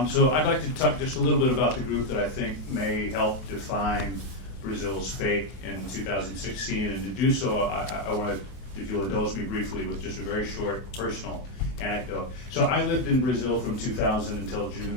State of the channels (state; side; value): late; right; 24 ms